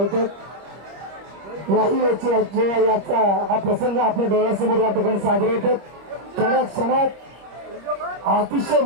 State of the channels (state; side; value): late; left; 25 ms